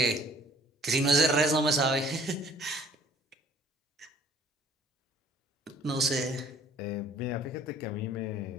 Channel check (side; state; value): both; normal; correlation 0.56